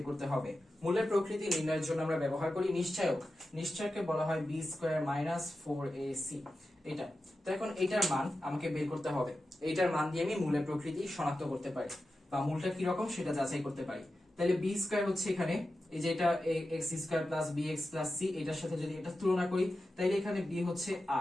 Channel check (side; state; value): both; normal; correlation 0.92